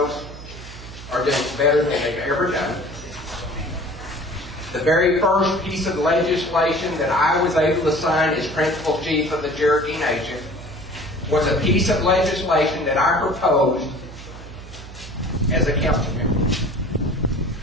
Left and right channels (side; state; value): right; noise; hum, 15 dB below the sound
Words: are doing better than they've ever done. The very first piece of legislation that I was able to sign as principal chief of the Cherokee Nation was a piece of legislation that I proposed as a council member.